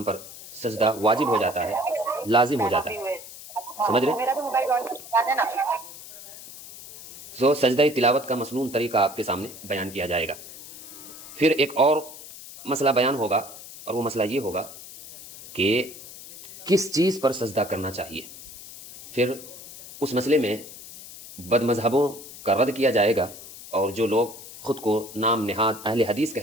پر سجدہ واجب ہو جاتا ہے، لازم ہو جاتا ہے۔ سمجھ رہے؟ تو سجدہ تلاوت کا مسنون طریقہ آپ کے سامنے بیان کیا جائے گا۔ پھر ایک اور مسئلہ بیان ہوگا، اور وہ مسئلہ یہ ہوگا کہ کس چیز پر سجدہ کرنا چاہیے۔ پھر اس مسئلے میں بد مذہبوں کا رد کیا جائے گا، اور جو لوگ خود کو نام نہاد اہل حدیث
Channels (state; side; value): noise; left; hiss, 15 dB below the sound